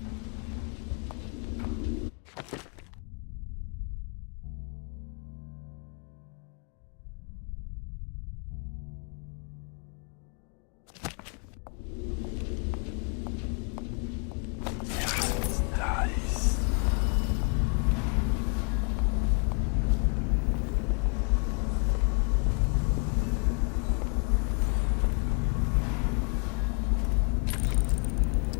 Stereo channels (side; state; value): right; quieter; 38.1 dB